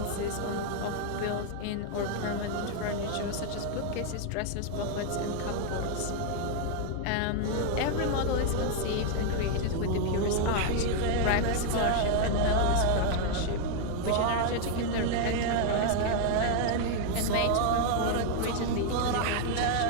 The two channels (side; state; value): both; different; correlation 0.00